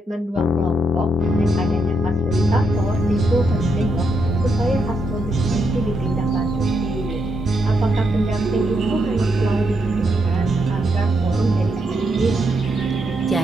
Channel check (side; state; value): both; normal; correlation 0.79